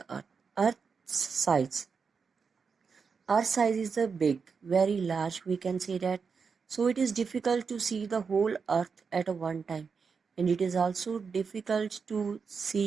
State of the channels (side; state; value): left; quieter; 5.6 dB